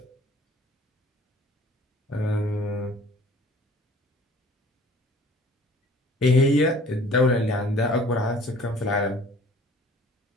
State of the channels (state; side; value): normal; both; correlation 0.52